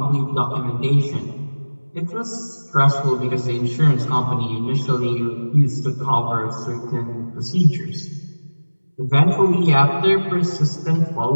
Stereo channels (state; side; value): inverted; both; correlation -1.00